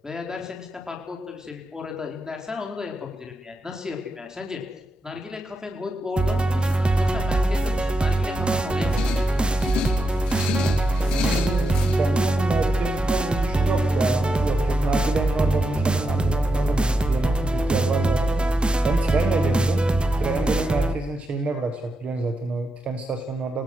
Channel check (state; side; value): normal; both; correlation 0.86